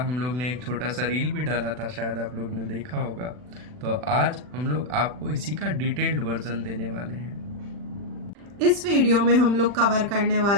लोग ने एक छोटा सा रील भी डाला था, शायद आप लोग ने देखा होगा। तो आज हम लोग आपको इसी का डिटेल्ड वर्जन देने वाले हैं। इस वीडियो में हम लोग कवर करने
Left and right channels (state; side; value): late; left; 40 ms